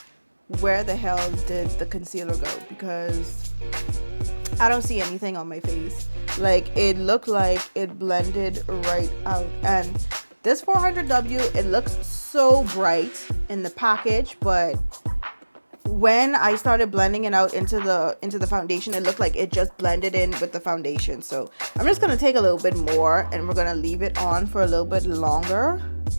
where the hell did the concealer go, because I don't see anything on my face. Like, it looked like it blended right out. And this 400W, it looks so bright in the package, but when I started blending it out into the foundation, it looked like it just blended in with the foundation. So I'm just gonna take a little bit more, and we're gonna leave it on for a little bit longer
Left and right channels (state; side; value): inverted; both; correlation -1.00